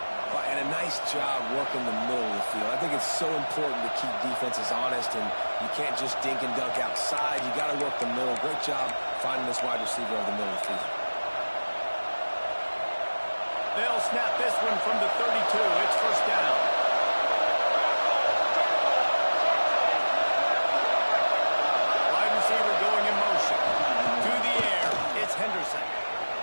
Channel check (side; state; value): both; inverted; correlation -1.00